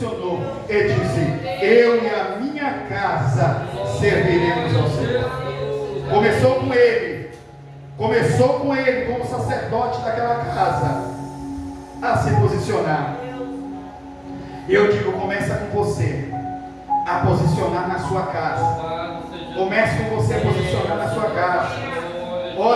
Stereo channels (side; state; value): both; identical; correlation 1.00